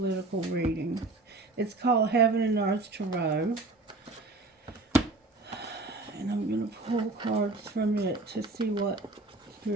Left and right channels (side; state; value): left; quieter; 3.1 dB